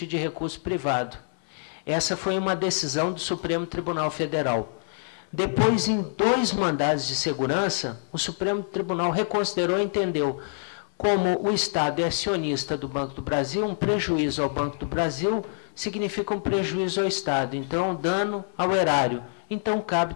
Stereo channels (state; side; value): silent; right; 61 dB below the other